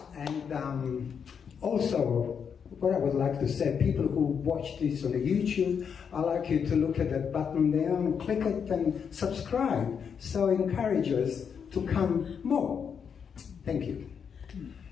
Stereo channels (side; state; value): right; quieter; 7.0 dB